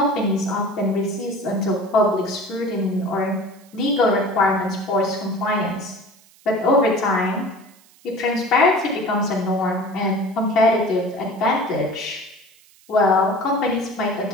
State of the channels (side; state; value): right; noise; hiss, 28 dB below the sound